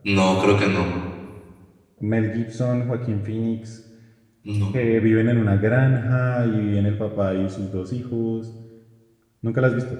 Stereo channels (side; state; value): both; identical; correlation 1.00